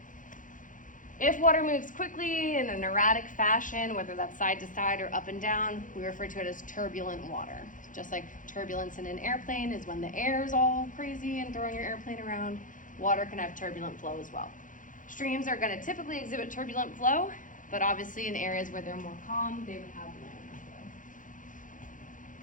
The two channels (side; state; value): right; late; 0.38 ms